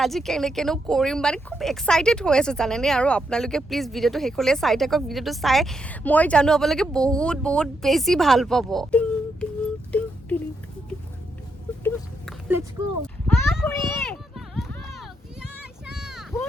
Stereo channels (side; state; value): both; normal; correlation 0.80